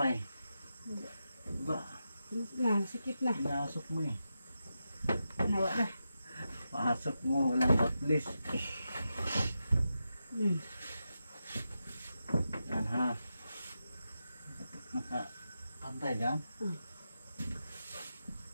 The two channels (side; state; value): both; inverted; correlation -0.88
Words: Baba. Na, sikip na. Pinasok mo eh. Nawa na. Pasok mo, walang batlis. Yan ha. Nakapantay dyan.